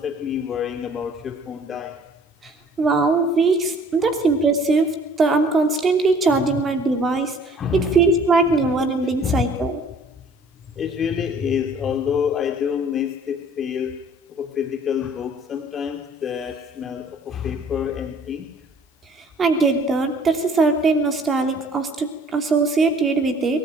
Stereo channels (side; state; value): both; normal; correlation 0.54